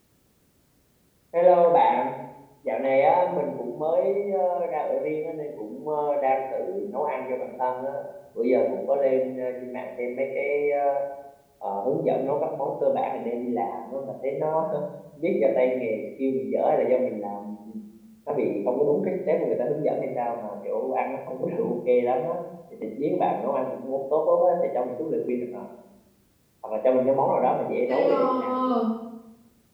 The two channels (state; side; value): identical; both; correlation 1.00